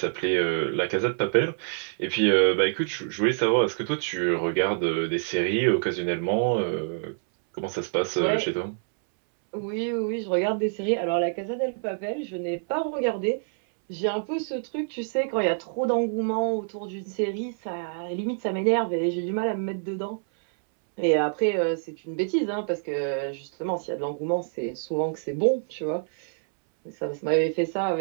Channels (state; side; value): silent; left; 61 dB below the other